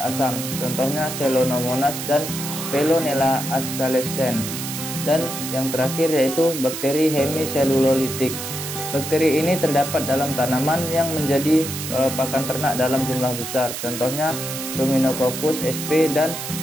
asam. Contohnya Celonomonas dan Veillonella ascalescens. Dan yang terakhir yaitu bakteri hemiselulolitik. Bakteri ini terdapat dalam tanaman yang menjadi pakan ternak dalam jumlah besar. Contohnya Ruminococcus sp dan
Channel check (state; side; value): noise; right; hiss, 6 dB below the sound